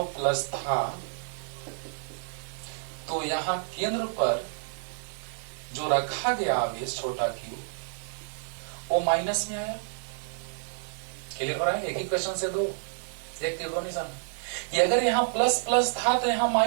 प्लस था, तो यहाँ केंद्र पर जो रखा गया आवेश छोटा क्यू, वो माइनस में आया। क्लियर हो रहा है? एक ही क्वेश्चन से दो, एक तीर दो निशान। ये अगर यहाँ प्लस प्लस था तो यहाँ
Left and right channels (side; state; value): left; silent; digital silence